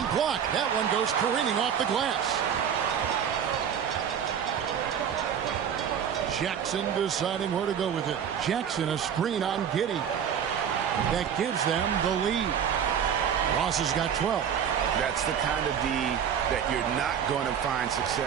blocked. That one goes careening off the glass. Jackson deciding where to go with it. Jackson a screen on Giddey. That gives them the lead. Ross has got 12. That's the kind of D that you're not going to find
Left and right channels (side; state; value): left; quieter; 8.2 dB